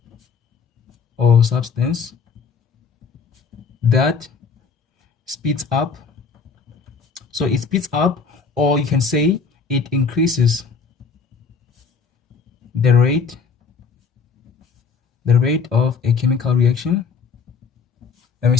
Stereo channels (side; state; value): right; quieter; 5.4 dB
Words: that speeds up. So it speeds up, or you can say it increases the rate of a chemical reaction. Let me